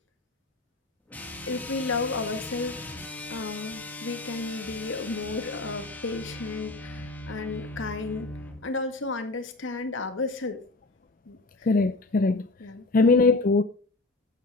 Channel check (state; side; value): quieter; right; 3.2 dB